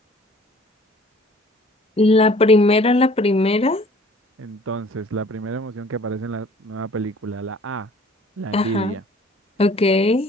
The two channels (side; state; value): both; normal; correlation 0.53